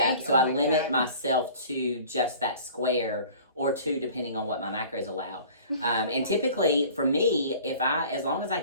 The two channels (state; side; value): inverted; both; correlation -0.46